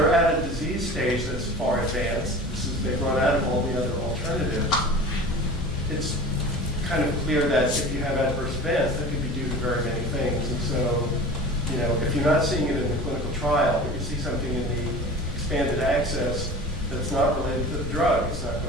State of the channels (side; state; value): both; normal; correlation 0.37